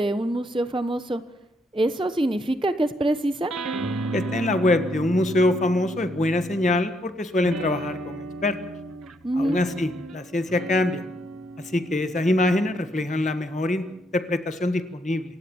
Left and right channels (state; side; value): normal; both; correlation 0.74